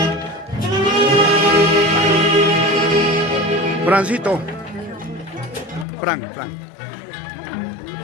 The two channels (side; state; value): right; drops out; at 5.9 s